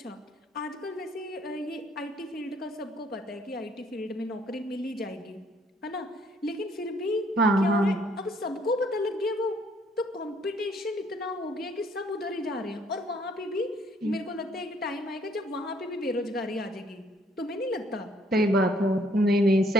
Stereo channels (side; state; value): both; normal; correlation 0.64